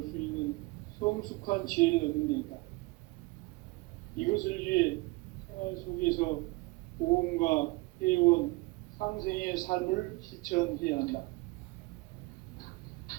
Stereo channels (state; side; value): quieter; left; 23.5 dB